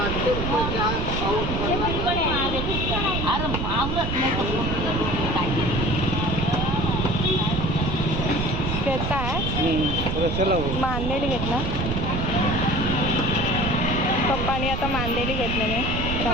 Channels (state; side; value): noise; right; rumble, 2 dB below the sound